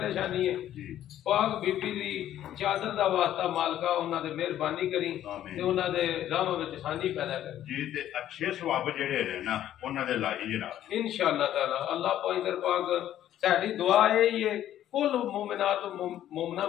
है पाक बीबी दी चादर दा वास्ता मालका उन्हां दे मेहरबानी करी ते उन्हां दे राह विच आसानी पैदा कर जी ते अच्छे सवाब जेड़े ने ना उन्हां दे लाई जनाब इंशाअल्लाह ताला। अल्लाह पैंतर पाक साडी दुआ यही है कुल मोमिनात मोमना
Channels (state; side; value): quieter; right; 11.9 dB